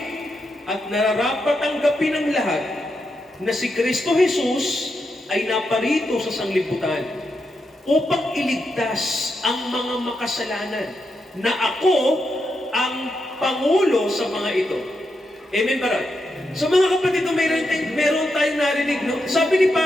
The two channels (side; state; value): both; normal; correlation 0.85